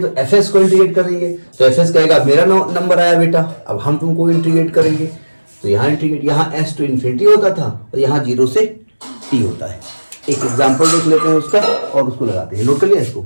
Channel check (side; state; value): both; inverted; correlation -1.00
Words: एफ एस को इंटीग्रेट करेंगे, तो एफ एस कहेगा मेरा नंबर आया बेटा, अब हम तुमको इंटीग्रेट करेंगे। तो यहाँ इंटीग्रेट, यहाँ एस टू इन्फिनिटी होता था और यहाँ 0 से टी होता है। एक एग्जाम्पल देख लेते हैं उसका और उसको लगाते हैं। नोट कर लिया इसको?